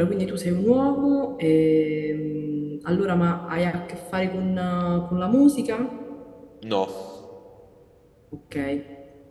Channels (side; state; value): both; identical; correlation 1.00